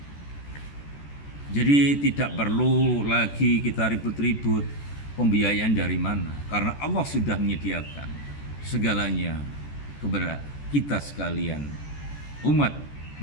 Jadi tidak perlu lagi kita ribut-ribut pembiayaan dari mana, karena Allah sudah menyediakan segalanya kepada kita sekalian, umat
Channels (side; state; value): right; late; 14 ms